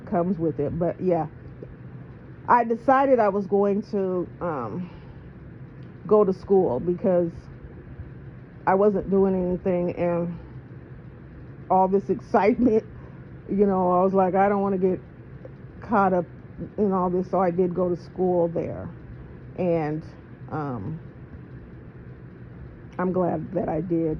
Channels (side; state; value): both; identical; correlation 1.00